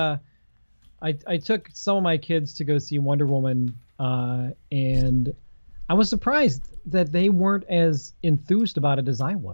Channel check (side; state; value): both; inverted; correlation -1.00